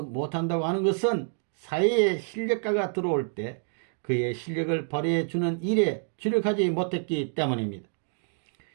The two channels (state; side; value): silent; left; 60 dB below the other